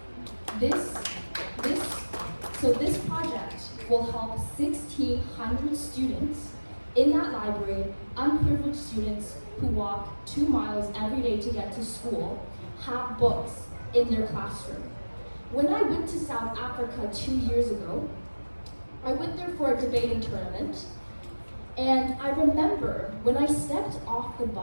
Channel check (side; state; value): both; inverted; correlation -1.00